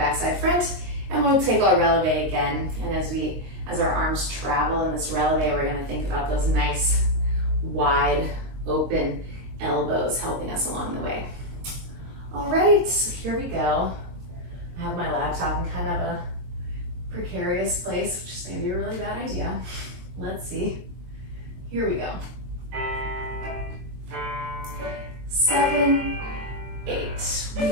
front, and we'll take our releve again. And as our arms travel in this releve, we're going to think about those nice, wide, open elbows helping us along the way. All right, so here we go. I have my laptop in kind of a precarious place, which is maybe a really bad idea. Let's see. Here we go. 7, 8. We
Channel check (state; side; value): late; left; 22 ms